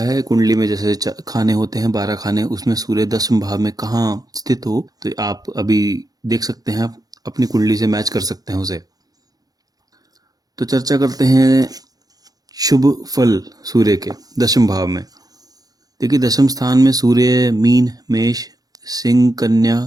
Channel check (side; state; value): left; late; 0.18 ms